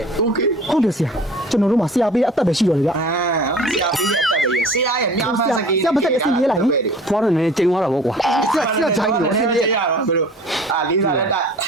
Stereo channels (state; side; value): normal; both; correlation 0.45